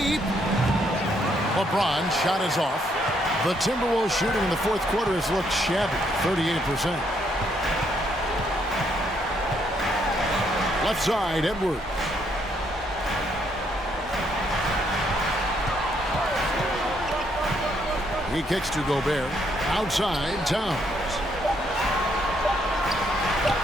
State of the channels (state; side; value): normal; both; correlation 0.72